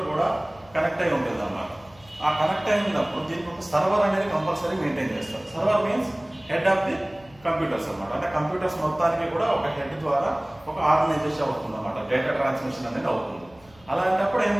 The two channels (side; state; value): left; noise; hum, 27 dB below the sound